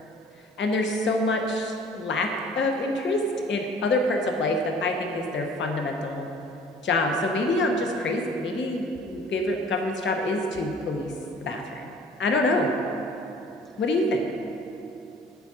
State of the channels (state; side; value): normal; both; correlation 0.49